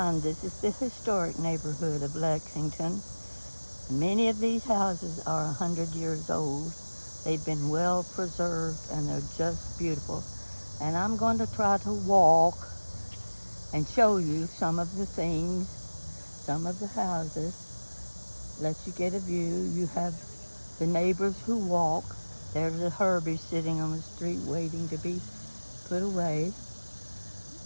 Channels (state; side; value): inverted; both; correlation -1.00